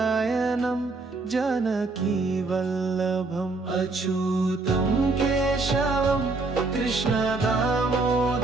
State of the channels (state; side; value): quieter; left; 3.5 dB